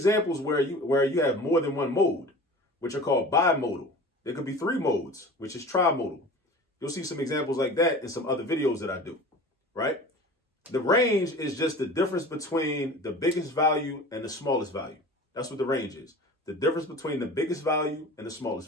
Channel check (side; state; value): both; normal; correlation 0.39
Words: where you have more than one mode, which are called bimodal. There could be 3 modes, which is trimodal. You'll see some examples like that in some other videos that I do, right? The range is just the difference between the biggest value and the smallest value. That's what the range is. The difference between the biggest value and the smallest